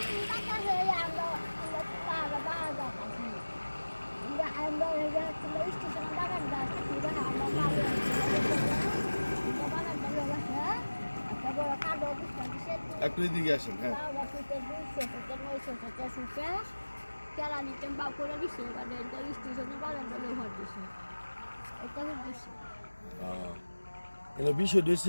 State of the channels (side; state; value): both; inverted; correlation -1.00